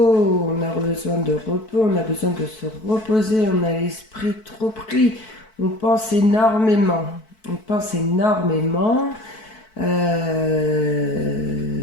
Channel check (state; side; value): late; right; 4.6 ms